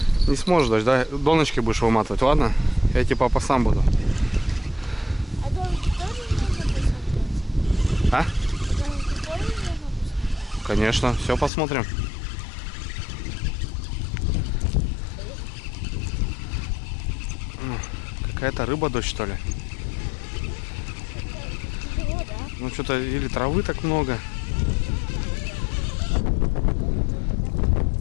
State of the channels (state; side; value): drops out; right; at 11.5 s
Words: Не сможешь, дочь, да? Доночки будешь выматывать, ладно? Я тебе, папа, сам буду. А домики тоже можно посмотреть? А? Домики тоже можно посмотреть? Конечно, все посмотрим. Какая-то рыба, дочь, что ли? Тяжело, да? Ну что-то или травы так много.